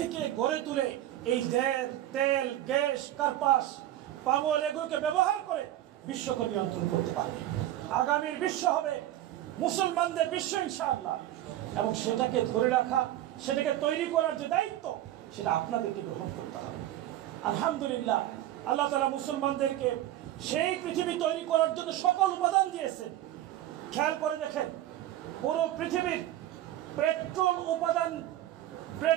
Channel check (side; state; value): left; quieter; 13.5 dB